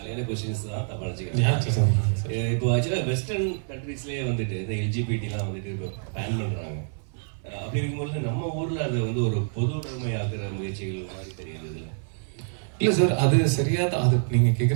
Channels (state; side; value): silent; left; digital silence